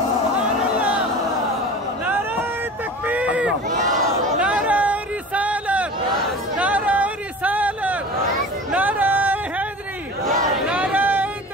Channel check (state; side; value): normal; both; correlation 0.36